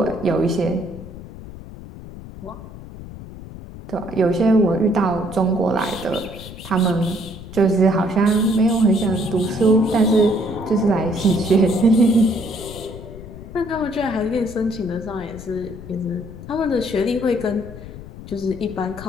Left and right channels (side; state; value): left; noise; rumble, 14 dB below the sound